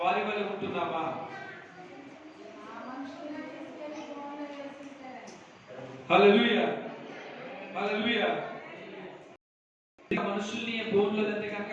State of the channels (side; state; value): both; identical; correlation 1.00